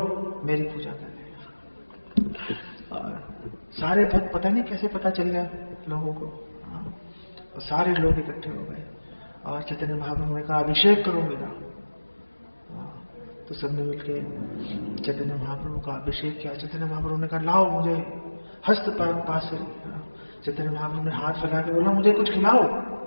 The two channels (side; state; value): both; inverted; correlation -1.00